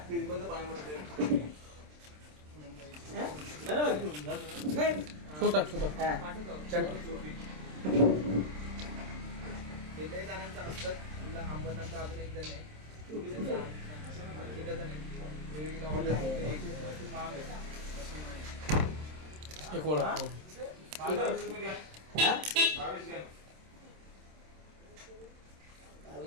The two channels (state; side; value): late; left; 27 ms